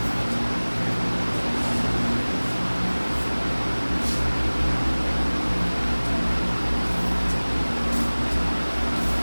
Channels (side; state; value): both; inverted; correlation -1.00